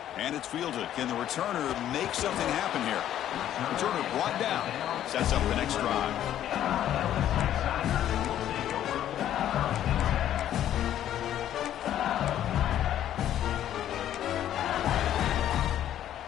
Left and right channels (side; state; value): right; quieter; 11.4 dB